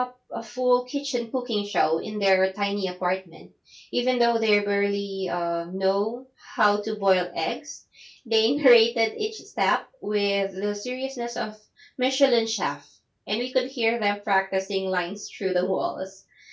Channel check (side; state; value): both; identical; correlation 1.00